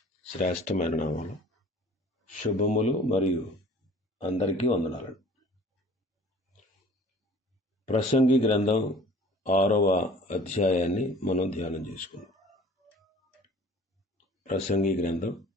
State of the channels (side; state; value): both; normal; correlation 0.48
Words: శ్రేష్టమైన నామములో శుభములు మరియు అందరికీ వందనాలు. ప్రసంగి గ్రంథం 6వ అధ్యాయాన్ని మనం ధ్యానం చేసుకుందాం. ప్రసంగి గ్రంథం